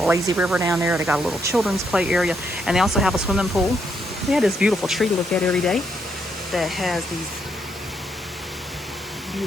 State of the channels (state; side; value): normal; both; correlation 0.76